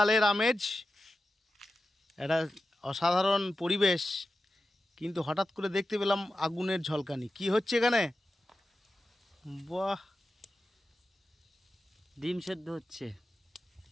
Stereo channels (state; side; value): normal; both; correlation 0.92